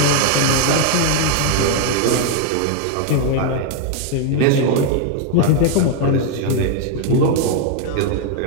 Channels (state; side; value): different; both; correlation 0.00